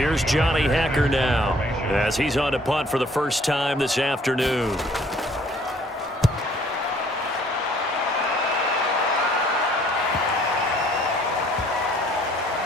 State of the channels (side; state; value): both; normal; correlation 0.59